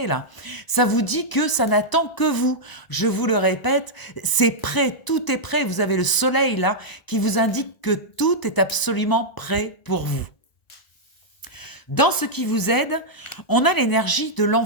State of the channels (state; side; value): late; right; 1.0 ms